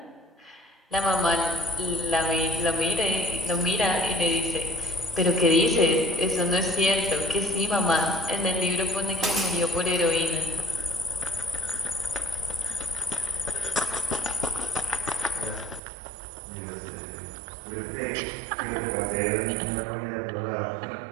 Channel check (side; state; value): left; drops out; at 15.8 s